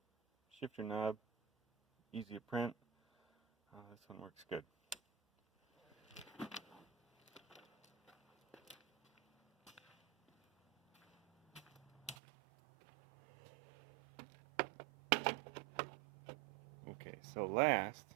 shifter knob, easy to print, this one works good. Okay, so last,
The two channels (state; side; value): drops out; left; at 12.2 s